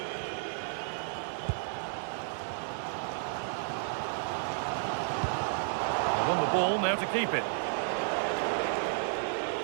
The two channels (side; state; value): left; silent; 56 dB below the other